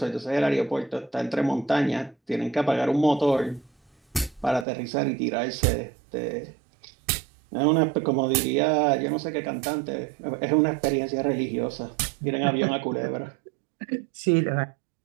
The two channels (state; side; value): drops out; left; at 4.7 s